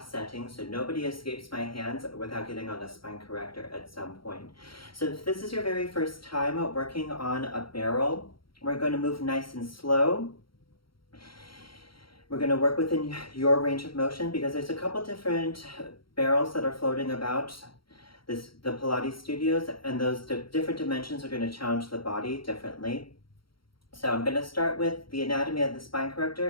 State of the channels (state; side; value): late; right; 0.74 ms